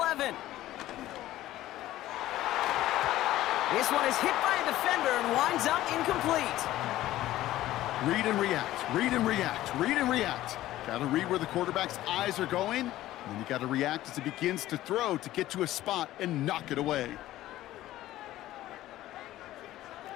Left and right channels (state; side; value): quieter; right; 14.9 dB